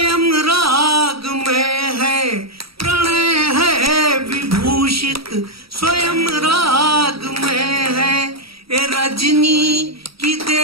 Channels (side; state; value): left; late; 0.76 ms